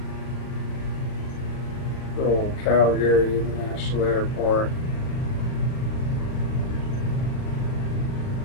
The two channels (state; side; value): late; right; 39 ms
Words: Old Calgary International Airport.